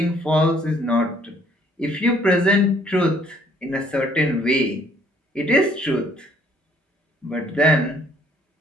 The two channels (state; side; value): normal; both; correlation 0.63